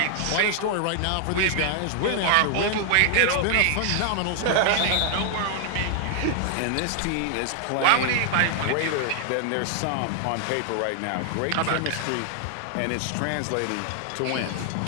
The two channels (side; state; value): both; different; correlation 0.00